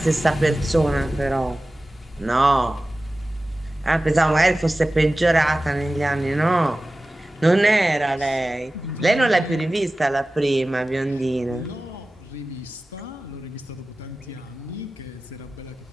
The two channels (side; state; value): both; normal; correlation 0.96